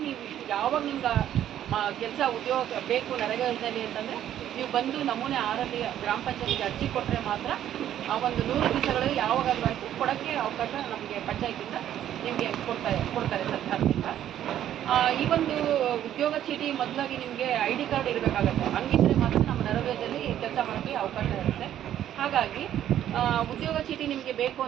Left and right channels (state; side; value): quieter; left; 11.2 dB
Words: ನೀವು ಯಾವಾಗ ನಿಮ್ಗೆ ಕೆಲಸ ಉದ್ಯೋಗ ಬೇಕು ನರೇಗಾ ಯೋಜನೆಯಲ್ಲಿ ಅಂತಂದರೆ ನೀವು ಬಂದು ನಮೂನೆ 6ರಲ್ಲಿ ಗ್ರಾಮ ಪಂಚಾಯತಿಗೆ ಅರ್ಜಿ ಕೊಟ್ಟರೆ ಮಾತ್ರ ಆ ಒಂದು 100 ದಿವಸಗಳಲ್ಲಿ ಯಾವಾಗಾದರೂ ಆಯಿತು ಕೊಡೋಕ್ಕೆ ಅವಕಾಶ ನಮಗೆ ಪಂಚಾಯತಿಂದ ನಿಮಗೆ ಕೊಡ್ತಾರೆ ಸರ್ಕಾರದಿಂದ. ಈ ಒಂದು ಉದ್ಯೋಗ ಚೀಟಿ ಮೊದಲಾಗಿ ನಿಮಗೆ ID ಕಾರ್ಡ್ ಇರಬೇಕಾಗತ್ತೆ. ಹಂಗಿದ್ರೆ ಮಾತ್ರ ನಮ್ಮ ನರೇಗಾದಲ್ಲಿ ಕೆಲಸ ಮಾಡೋಕ್ಕೆ ಅವಕಾಶ ಇರುತ್ತೆ. ಹಾಗಾಗಿ ಉದ್ಯೋಗ ಚೀಟಿ ನಿಮಗೆ ಬೇಕು